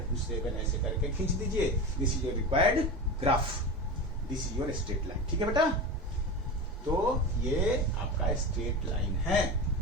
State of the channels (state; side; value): normal; both; correlation 0.26